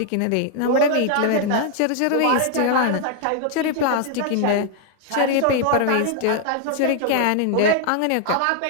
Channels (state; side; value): different; both; correlation 0.00